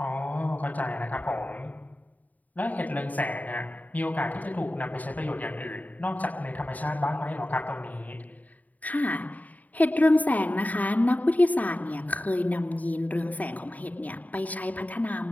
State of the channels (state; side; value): late; right; 0.075 ms